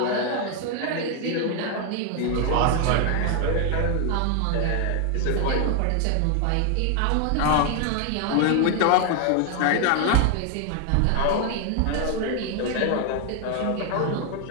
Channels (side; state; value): both; different; correlation 0.00